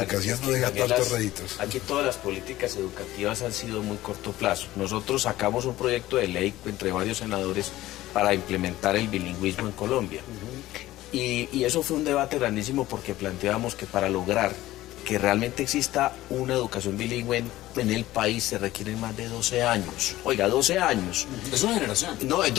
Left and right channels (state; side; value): quieter; right; 16.0 dB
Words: educación no deja tantos réditos. Aquí todas las políticas educativas han sido muy corto plazo. Nosotros sacamos un proyecto de ley entre varios senadores para implementar el bilingüismo en Colombia. Y eso fue un debate grandísimo porque planteábamos que para lograr que realmente exista una educación bilingüe en el país se requieren más de 12 años. Oiga, 12 años. Es una generación. No,